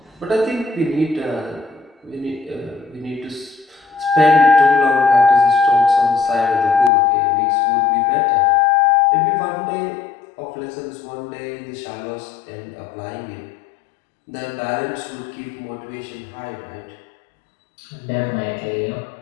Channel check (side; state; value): right; drops out; at 6.9 s